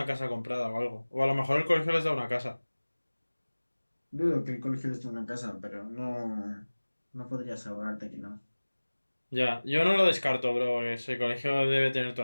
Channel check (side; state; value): both; inverted; correlation -1.00